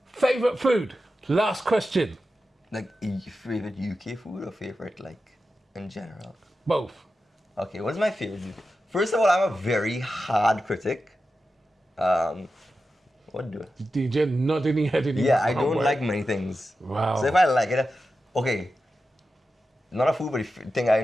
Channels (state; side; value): normal; both; correlation 0.91